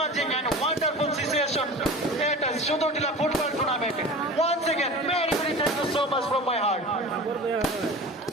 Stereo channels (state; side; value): normal; both; correlation 0.35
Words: and wonderful situation. It is Sudotila football tournament. Once again, very thank you so much from my heart.